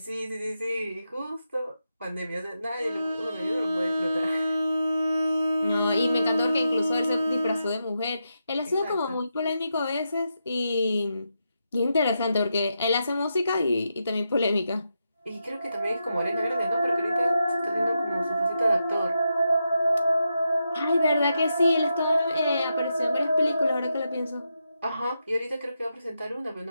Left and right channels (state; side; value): inverted; both; correlation -0.86